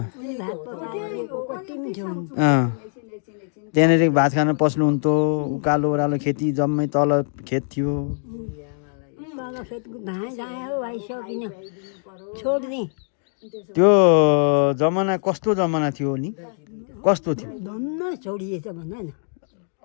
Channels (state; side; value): silent; right; digital silence